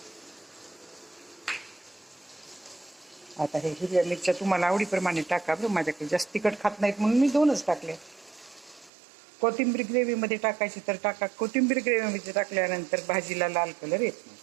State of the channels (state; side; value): drops out; left; at 8.9 s